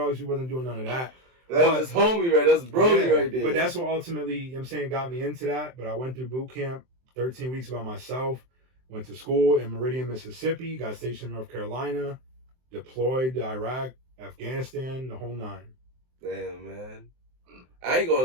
We wasn't doing none of that. That's homie, right? That's brody right there. But that's what ultimately, you know what I'm saying, got me into that. But I went through boot camp, 13 weeks by myself. Went to school in Meridian, Mississippi, got stationed in North Carolina, deployed to Iraq, Afghanistan, the whole 9. Damn, man. I ain't gonna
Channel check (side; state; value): left; late; 23 ms